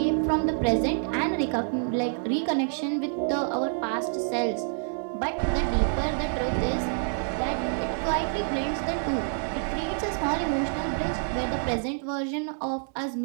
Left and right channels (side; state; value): left; silent; 60 dB below the other